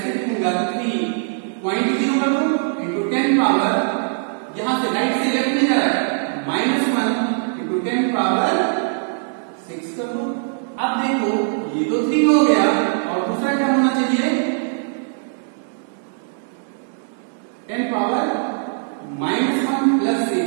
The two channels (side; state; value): left; silent; digital silence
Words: लिखूंगा 3.0 कर दूं into 10 पावर, यहां से राइट से लेफ्ट में जा रहा है, -1 into 10 पावर 6 कर दो। अब देखो ये तो 3 हो गया, और दूसरा क्या होना चाहिए 10 पावर -1 +